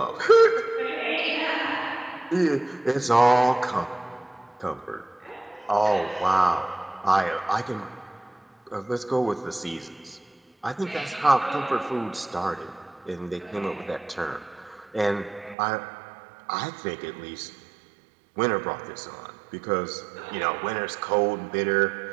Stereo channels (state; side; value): drops out; left; at 15.6 s